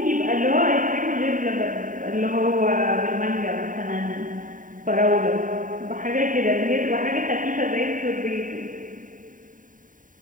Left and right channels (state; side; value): late; left; 0.39 ms